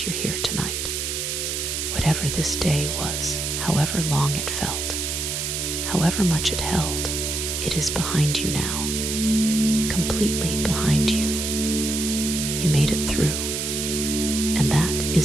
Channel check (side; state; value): right; noise; hiss, 2 dB below the sound